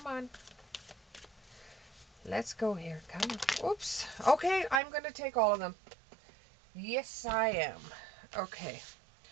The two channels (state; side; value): drops out; left; at 4.8 s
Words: on. Let's go here. Come on. Oops. Okay, I'm going to take all of them. Yes, I am. Okay.